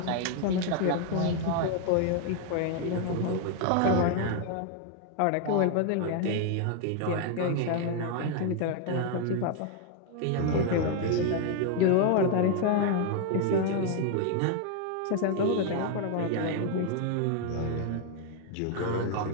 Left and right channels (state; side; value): different; both; correlation 0.00